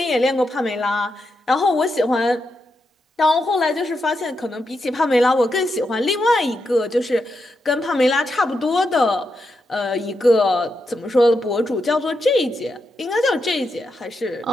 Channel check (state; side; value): normal; both; correlation 0.85